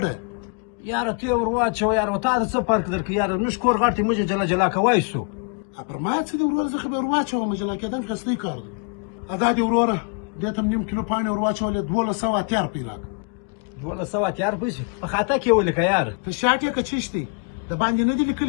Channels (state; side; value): quieter; right; 37.8 dB